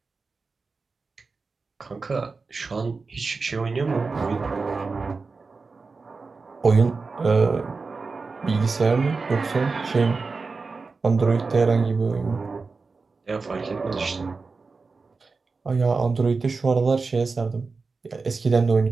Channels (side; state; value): left; quieter; 4.3 dB